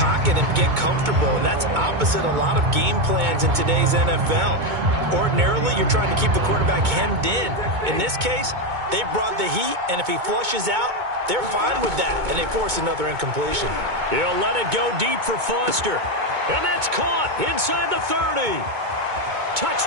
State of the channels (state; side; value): late; left; 2.2 ms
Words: and get comfortable, and that's opposite a lot of game plans in today's NFL. Ordinarily, you're trying to keep the quarterback hemmed in. In this case, they brought the heat, and if he flushes out, they're fine with that, and they force another incompletion. He'll let it go deep for Foster. And that's caught inside the 30.